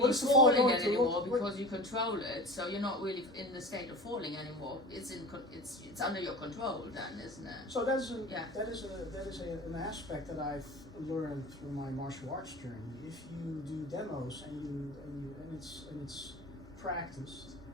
What is the fall falling going to anymore look- because you control it. So you're not really in the state of falling anymore. It's under your control then, isn't it? So that is Yeah. an aspect that I've learned through my martial arts journey. If you do demos and it's practiced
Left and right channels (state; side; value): normal; both; correlation 0.35